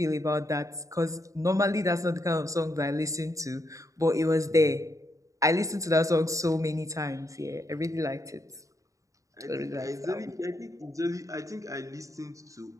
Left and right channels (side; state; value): left; late; 0.16 ms